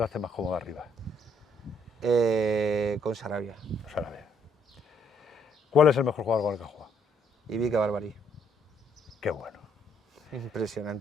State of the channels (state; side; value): normal; both; correlation 0.69